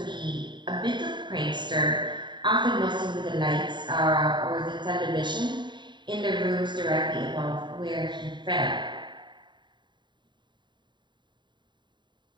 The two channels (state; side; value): late; left; 0.22 ms